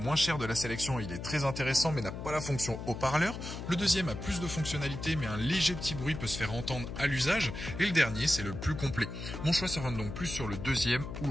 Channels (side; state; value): left; noise; hum, 8 dB below the sound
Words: cher de la sélection, il est très intéressant mais n'a pas la fonction haut-parleur. Le deuxième a plus de fonctionnalités mais un léger petit bruit peut se faire entendre à l'usage. Et le dernier c'est le plus complet. Mon choix se rend donc plus sur le deuxième ou